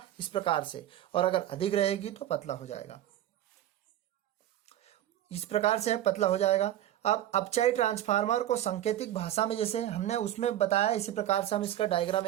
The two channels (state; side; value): quieter; left; 12.6 dB